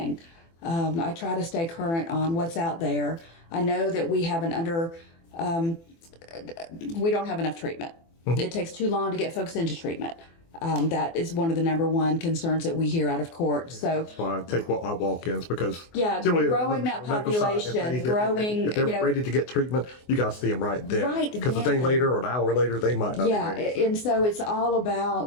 I try to stay current on what's out there. I know that we have we don't have enough treatment. It takes too long to get folks into treatment. That is one of the number one concerns that we hear out of court. So that's why I take my walk-ins, because growing that population, if they're ready to get treatment, you got to see them right then. Right because a day later or an hour later, they might not. Yeah, be ready. and so it's all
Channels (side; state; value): right; late; 24 ms